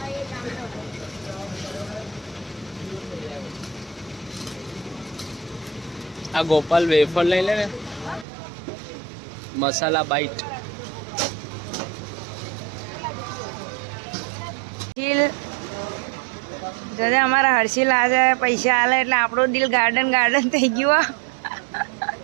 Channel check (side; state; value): left; drops out; at 8.2 s